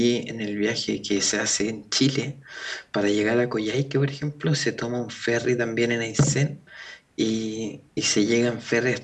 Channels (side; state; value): both; identical; correlation 1.00